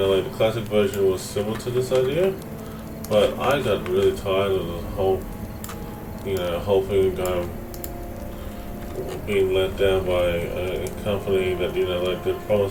the classic version was similar to this idea, but I got really tired of the whole hoping being let down by a company that they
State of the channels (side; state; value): both; identical; correlation 1.00